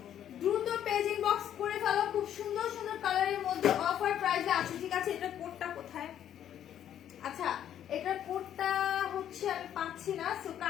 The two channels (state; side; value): quieter; right; 10.4 dB